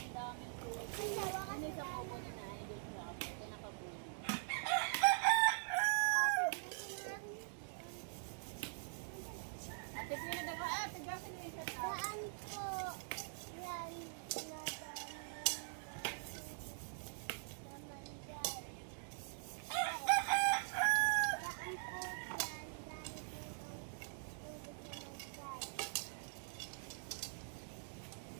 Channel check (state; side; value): silent; left; digital silence